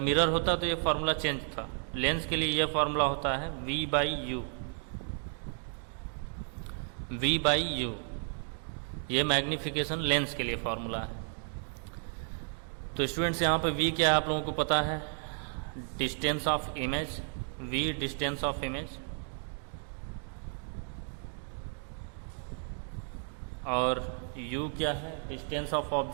होता तो ये फार्मूला चेंज था, लेंस के लिए ये फार्मूला होता है V/U। V/U ये मैग्नीफिकेशन लेंस के लिए फार्मूला है। तो स्टूडेंट्स यहाँ पे V क्या है आप लोगों को पता है, distance of image, V distance of image, और U क्या है, डिस्टेंस ऑफ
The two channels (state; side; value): silent; left; 56 dB below the other